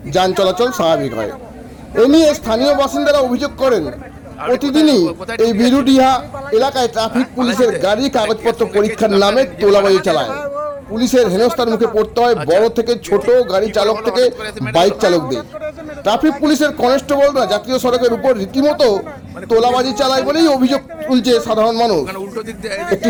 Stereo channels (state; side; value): identical; both; correlation 1.00